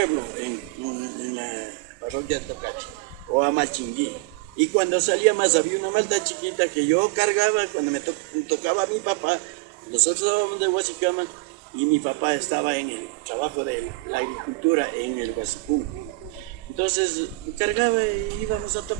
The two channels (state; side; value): quieter; left; 23.2 dB